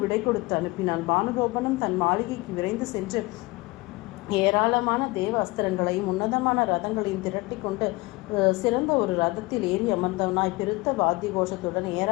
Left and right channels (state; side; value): quieter; right; 22.9 dB